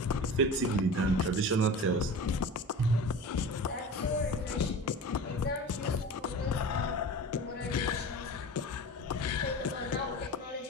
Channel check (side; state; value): both; normal; correlation 0.34